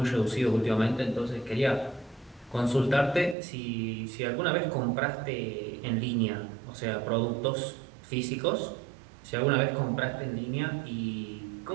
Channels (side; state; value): left; drops out; at 3.4 s